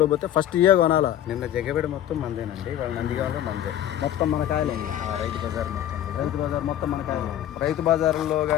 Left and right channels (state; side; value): quieter; right; 11.5 dB